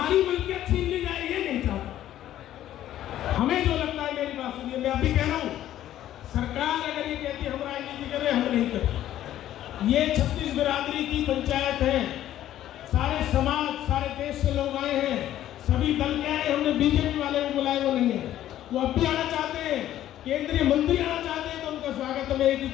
मिल्कियत छीन ली जाए ये नहीं चाहते। हमें जो लगता है, मेरी बात सुनिए, मैं अभी कह रहा हूँ, सरकार अगर ये कहती है हम राजनीति करें, हम नहीं करते। ये 36 बिरादरी की पंचायत है, सारे समाज, सारे देश से लोग आए हैं, सभी दल के आए। हमने बीजेपी वाले को बुलाए, वो नहीं है, वो अब भी आना चाहते हैं, केंद्रीय मंत्री आना चाहते हैं, तो उनका स्वागत है। मैं एक ही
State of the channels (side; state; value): right; quieter; 12.6 dB